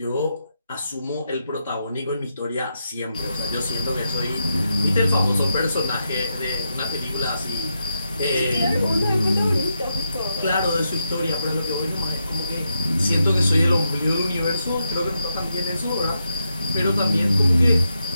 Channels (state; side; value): inverted; both; correlation -0.85